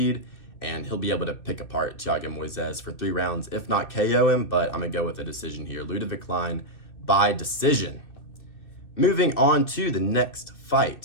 and he'll be able to pick apart Thiago Moises for 3 rounds, if not KO him, but I'm going to go with a decision here. Ludovic Klein by decision. Moving on to the next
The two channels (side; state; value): right; late; 2.7 ms